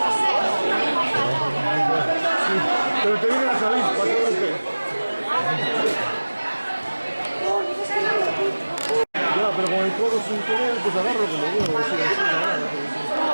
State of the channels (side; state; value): both; inverted; correlation -1.00